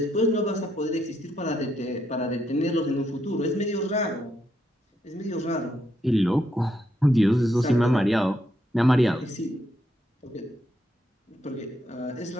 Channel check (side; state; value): both; normal; correlation 0.77